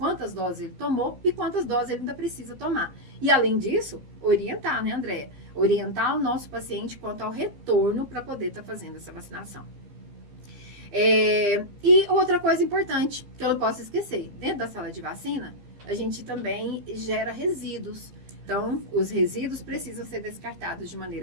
doses ele tomou e quantas doses ele ainda precisa tomar. E além disso, orientar, né, Andréia? Orientar o nosso paciente quanto ao retorno para poder estar fazendo essa vacinação. E outra coisa importante, que eu não posso esquecer, dentro da sala de vacina, a gente também gera resíduos. Então, os resíduos precisam ser descartados de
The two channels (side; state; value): left; late; 15 ms